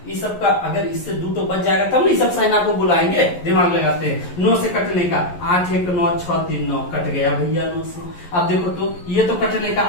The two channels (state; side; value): late; right; 11 ms